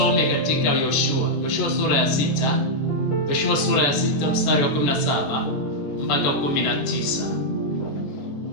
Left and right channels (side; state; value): right; late; 14 ms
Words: katika Yoshua sura ya 6. Yoshua sura ya 6 mstari wa 17 mpaka 19.